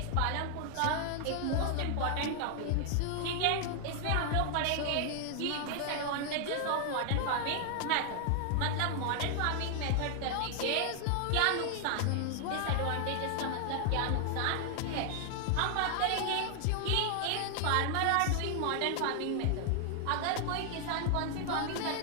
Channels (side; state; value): both; different; correlation 0.00